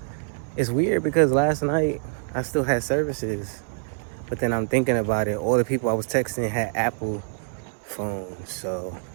it's weird because last night I still had services, but then I'm thinking about it. All the people I was texting had Apple phones, so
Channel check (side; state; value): left; silent; digital silence